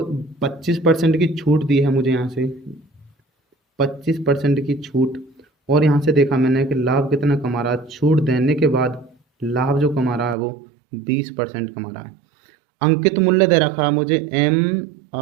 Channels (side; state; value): left; drops out; at 10.4 s